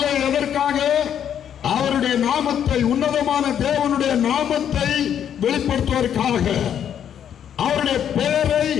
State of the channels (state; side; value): quieter; right; 9.2 dB